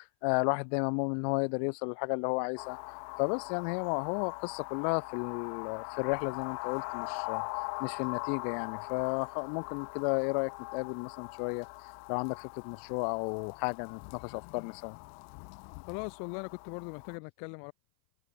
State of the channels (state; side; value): silent; right; 54 dB below the other